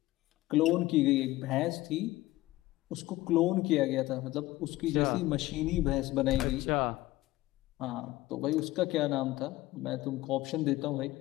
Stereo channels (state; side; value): quieter; right; 17.7 dB